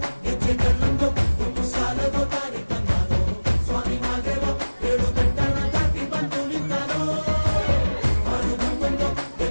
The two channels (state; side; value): inverted; both; correlation -1.00